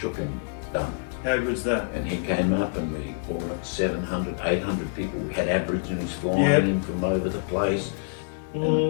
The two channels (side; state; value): right; silent; digital silence